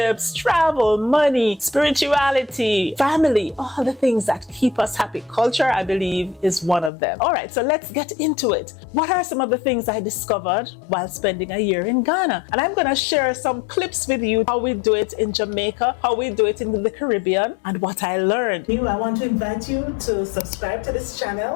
travel, money, spirituality, family, all the things that keep us happy. Culture, I believe, is one of them. All right, so let's get into it. What are some of the things I discovered while spending a year in Ghana? And I'm going to share some clips with you, how we do it in Jamaica, how we do it in the Caribbean, and what I learned. I want to invite you to subscribe to this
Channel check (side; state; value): right; drops out; at 6.9 s